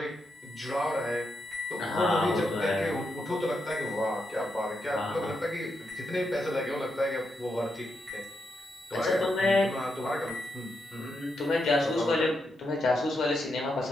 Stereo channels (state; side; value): normal; both; correlation 0.83